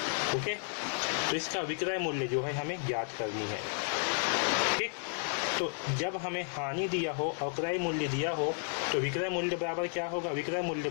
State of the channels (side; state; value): right; silent; 56 dB below the other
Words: ओके। तो इसका विक्रय मूल्य जो है हमें ज्ञात करनी है, ठीक। तो जब हमें हानि दिया हो और क्रय मूल्य दिया हो तो विक्रय मूल्य बराबर क्या होगा, विक्रय मूल्य